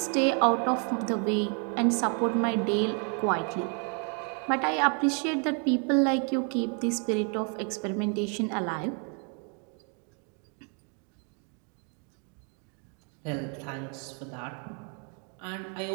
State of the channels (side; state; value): left; quieter; 39.2 dB